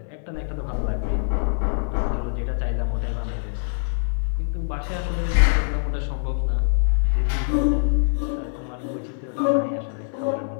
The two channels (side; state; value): right; silent; 63 dB below the other